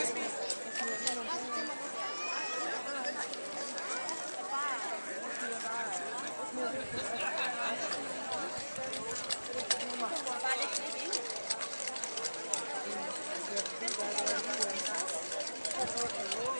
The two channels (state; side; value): inverted; both; correlation -1.00